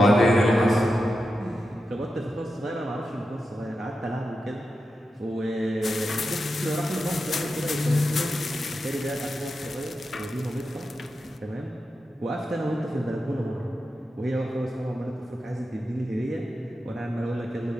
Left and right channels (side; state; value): both; normal; correlation 0.90